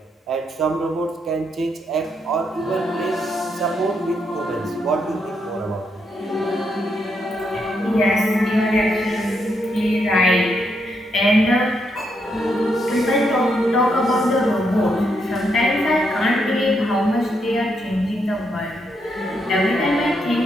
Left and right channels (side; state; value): both; normal; correlation 0.79